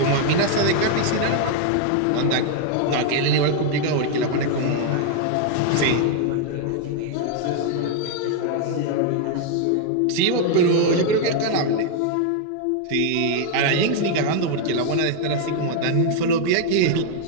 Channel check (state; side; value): different; both; correlation 0.00